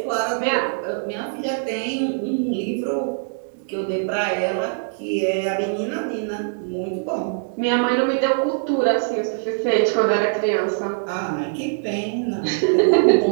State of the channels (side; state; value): left; silent; digital silence